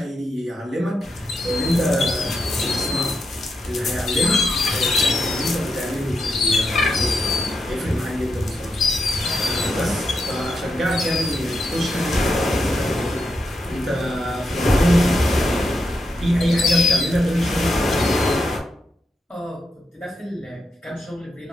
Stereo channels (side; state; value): both; normal; correlation 0.84